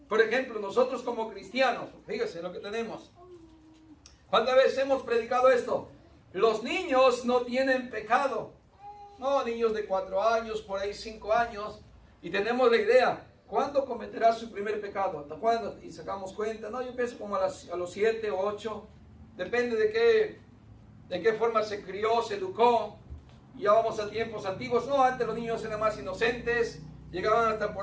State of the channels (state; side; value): identical; both; correlation 1.00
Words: Por ejemplo, nosotros como cristianos, fíjese lo que tenemos. ¿Cuántas veces hemos predicado esto? Los niños no tienen pecado. No, niños de 4 años, por ahí 5 años. Y tenemos la idea, ¿cuándo cometerá su primer pecado? ¿Hasta cuándo? Y sacamos cuenta. No, yo pienso como a los 7 o 8. Depende de qué forma se crió, se educó. Ya vamos a tiempos antiguos. No, antes los niños eran más inocentes. Llegaban hasta